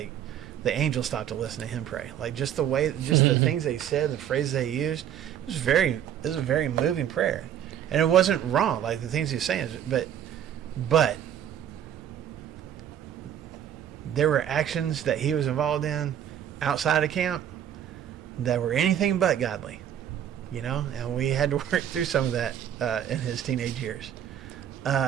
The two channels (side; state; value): left; quieter; 10.1 dB